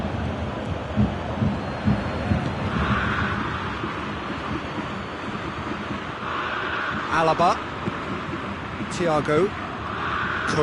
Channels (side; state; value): both; identical; correlation 1.00